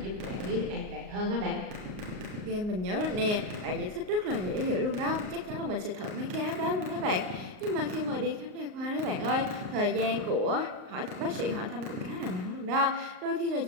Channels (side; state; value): left; late; 38 ms